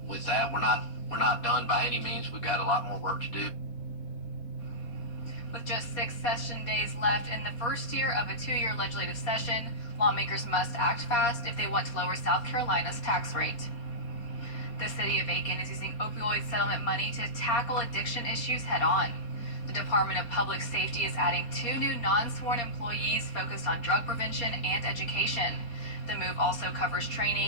with that, we're not done by any means. We've got a lot more work to do. With just 6 session days left in the first year of a 2-year legislative session, lawmakers must act fast if they want to lower South Carolina's tax rate. The city of Aiken is using opioid settlement money to tackle addiction issues head on. The Department of Public Safety is adding 2 new non-sworn employees focused on drug prevention and education. The move also covers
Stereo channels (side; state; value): right; late; 4.2 ms